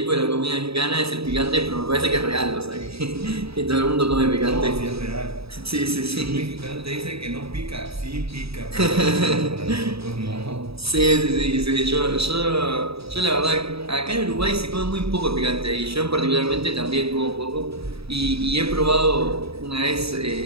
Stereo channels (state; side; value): late; left; 0.77 ms